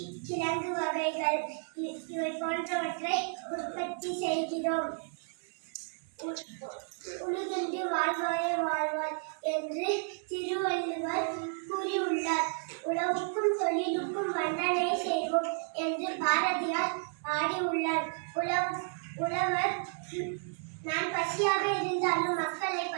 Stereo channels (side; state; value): left; silent; 56 dB below the other